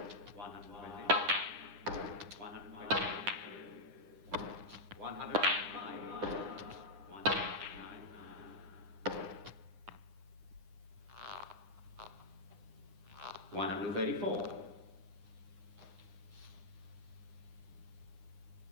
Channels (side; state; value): left; late; 9.8 ms